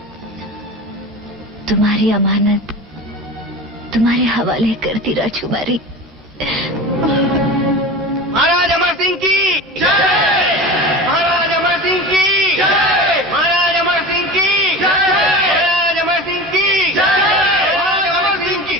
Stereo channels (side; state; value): both; normal; correlation 0.32